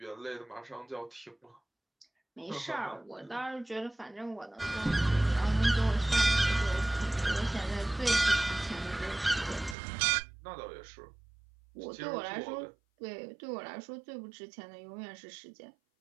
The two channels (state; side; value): drops out; left; at 9.8 s